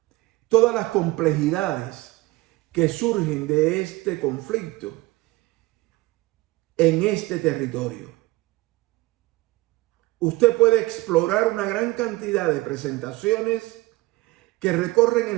todas las complejidades que surgen de este conflicto en este territorio. Usted puede explorar una gran cantidad de presentaciones que recorren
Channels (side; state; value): left; quieter; 20.6 dB